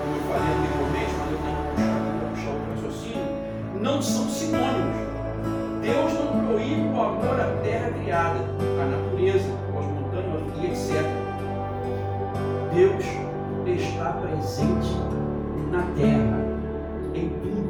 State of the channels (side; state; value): both; identical; correlation 1.00